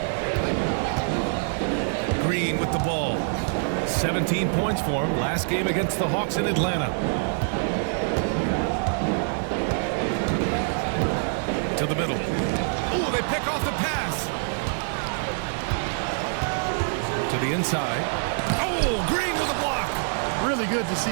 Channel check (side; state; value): left; silent; digital silence